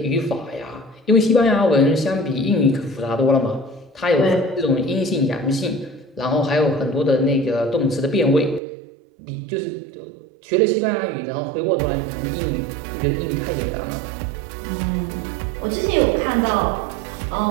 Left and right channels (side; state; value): left; drops out; at 8.6 s